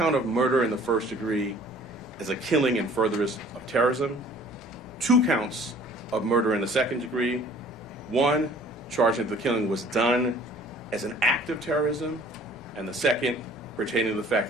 of murder in the first degree as a killing in furtherance of terrorism, 2 counts of murder in the second degree, 1 charging that the killing was done as an act of terrorism, and the second pertaining to the fact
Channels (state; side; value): normal; both; correlation 0.52